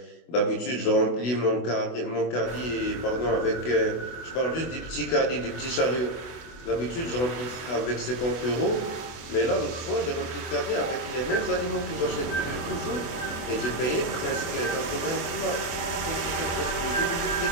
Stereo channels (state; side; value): late; right; 24 ms